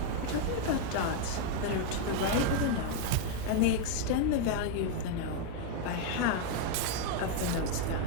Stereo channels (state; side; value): different; both; correlation 0.00